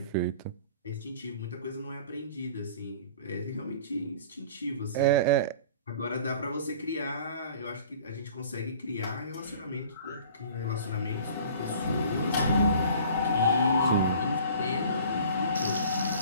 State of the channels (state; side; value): inverted; both; correlation -0.47